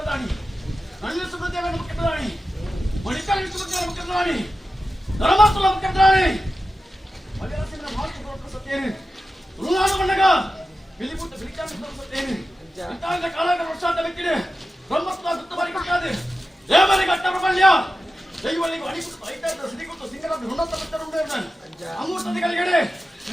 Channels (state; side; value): normal; both; correlation 0.93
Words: ನಳಿನ ಸುಬ್ರದೇವನ ಮುಖ್ಯ ಪ್ರಧಾನಿ ಮಣಿಕರ್ಣ ಸುಬ್ರದೇವನ ಮುಖ್ಯ ಪ್ರಧಾನಿ ಧರ್ಮಸ್ಥಳ ಮುಖ್ಯ ಪ್ರಧಾನಿ ಮಲಯಾಳಸಿನ ಮಹಾತ್ಮ ಸತ್ಯೇನು ತುಳುನಾಡು ಮಣ್ಣಗ ಬಿಲಿಪುಟ್ಟ ಬಿಲಿಚಾಂದ್ರ ಸತ್ಯೇನು ಇಂತಹ ಕಾಲದ ವರ್ಷಾಂತ ವ್ಯಕ್ತಿದೆ ಬ್ರಹ್ಮಸ್ಥಳ ಗುತ್ತಬಾರಿ ಕೊಟ್ಟಾದೆ ದೇವರಿಗೆ ಕಟ್ಟ ಪ್ರಬಲ್ಯ ದೈವಳಿಗೆ ಅಣಿಪುಟ್ಟು ಐತಾದ ಸಿಡಿಗುಟ್ಟು ಸಿಂಗರ ಋಣತ ಭಕ್ತರು ಉಂಡೇವನ ಅಮೂರ್ತದಿಗಳಿಗೆ